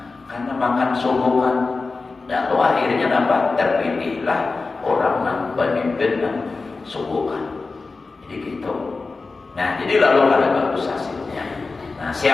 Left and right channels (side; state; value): right; quieter; 3.9 dB